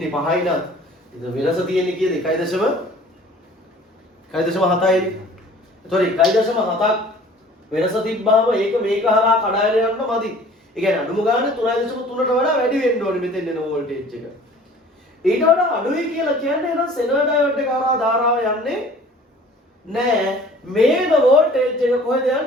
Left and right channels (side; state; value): both; normal; correlation 0.49